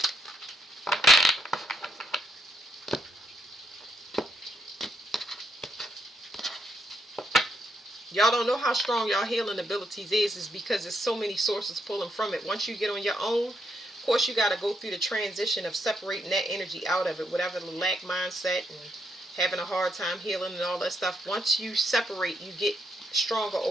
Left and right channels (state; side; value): normal; both; correlation 0.78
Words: Y'all don't know how strong y'all healing abilities is because there's so many sources pulling from it. Once you get on your own, of course you got to go through the transition of separating that energy out of it, whatever the lack mindset and having a hard time healing and all that stuff. Once you separate, you get stronger